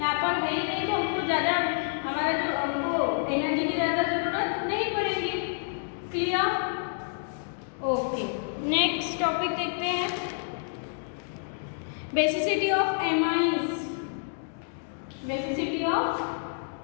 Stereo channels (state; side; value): silent; right; digital silence